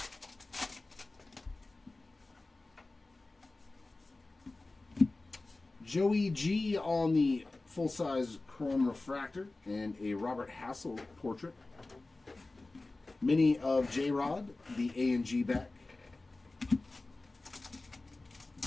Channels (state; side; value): quieter; right; 3.2 dB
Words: Joey G on the full-size chrome refractor and a Robert Hassel portrait. Mini of J-Rod, the A&G back.